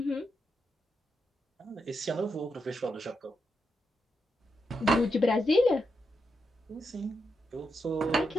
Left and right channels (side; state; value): both; normal; correlation 0.84